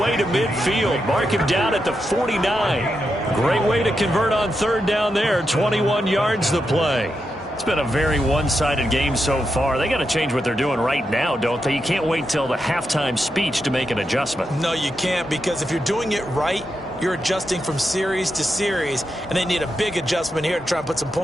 to midfield. Mark him down at the 49. Great way to convert on third down there. 21 yards the play. It's been a very one-sided game so far. They got to change what they're doing right now, don't they? You can't wait till the halftime speech to make an adjustment. No, you can't, because if you're doing it right, you're adjusting from series to series, and they need a big adjustment here to try and put some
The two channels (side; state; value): both; normal; correlation 0.86